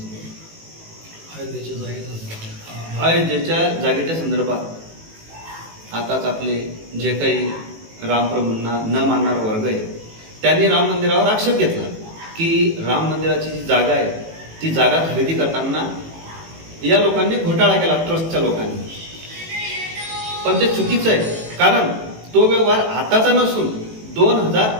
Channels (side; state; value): left; late; 18 ms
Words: अयोध्येच्या जागेच्या संदर्भात आताच आपले जे काही रामप्रभूंना न मानणारा वर्ग आहे त्यांनी राम मंदिरावर आक्षेप घेतला की राम मंदिराची जी जागा आहे ती जागा खरेदी करताना या लोकांनी घोटाळा केला, ट्रस्टच्या लोकांनी. पण ते चुकीचं आहे, कारण तो व्यवहार आताचा नसून